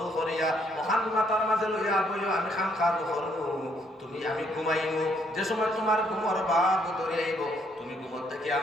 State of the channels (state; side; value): normal; both; correlation 0.69